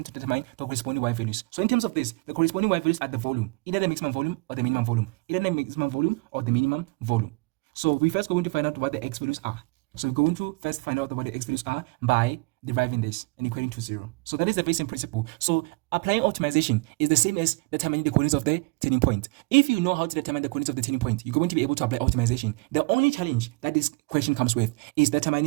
to determine the corresponding y values. So in terms of this, the corresponding y values are the volume, either the maximum volume or the minimum volume, either the maximum volume or the minimum volume. So we first going to find out what the x values are. So we're going to first find out what the x values are by deriving this and equating to 0. So that is the very same principle. So applying optimization is the same as determining the coordinates of the turning point. If you know how to determine the coordinates of the turning point, you're going to be able to apply optimization. The only challenge that this question comes with is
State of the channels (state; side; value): quieter; left; 27.5 dB